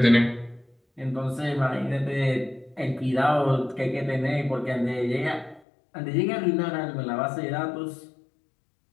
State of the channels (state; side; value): drops out; right; at 5.6 s